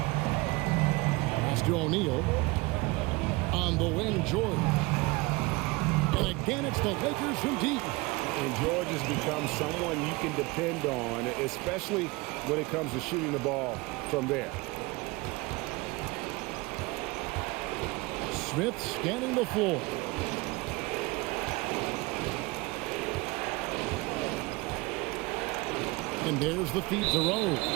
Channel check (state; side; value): quieter; left; 23.9 dB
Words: Pass to O'Neal. On the wing, George. And again, it's the Lakers from deep. And George has become someone you can depend on, especially when it comes to shooting the ball from there. Smith scanning the floor. And there's the feed to Rose.